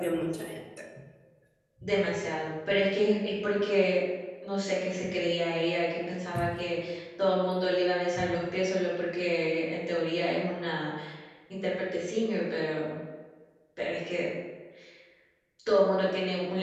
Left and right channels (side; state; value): both; identical; correlation 1.00